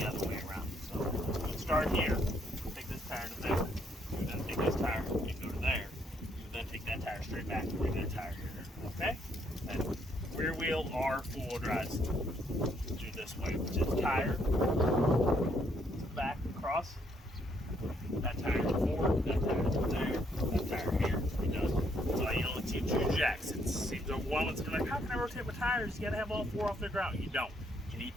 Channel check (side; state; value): both; normal; correlation 0.71